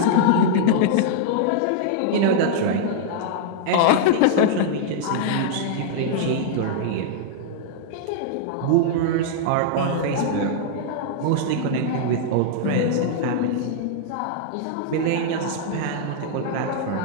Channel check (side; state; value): both; different; correlation -0.01